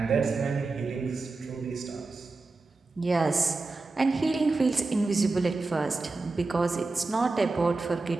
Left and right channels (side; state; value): left; quieter; 3.6 dB